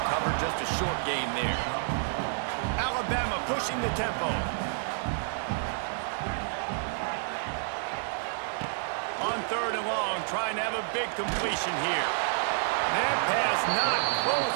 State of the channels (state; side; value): silent; left; digital silence